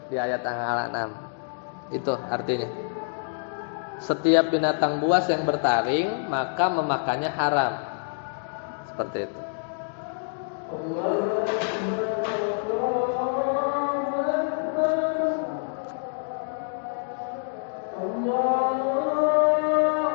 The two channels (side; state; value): right; silent; digital silence